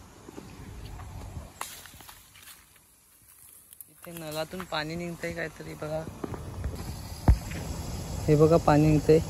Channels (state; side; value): identical; both; correlation 1.00